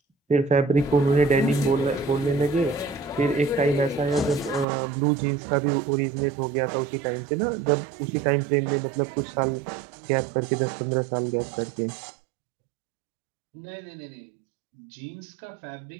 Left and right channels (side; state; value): left; drops out; at 4.7 s